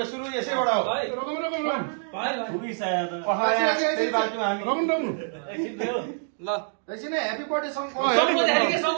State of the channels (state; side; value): silent; left; digital silence